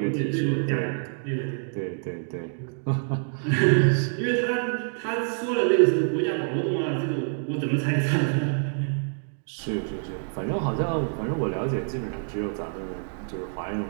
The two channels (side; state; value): left; silent; digital silence